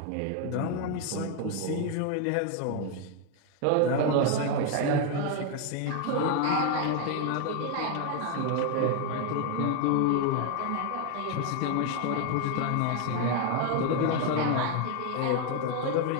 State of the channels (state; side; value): different; both; correlation 0.01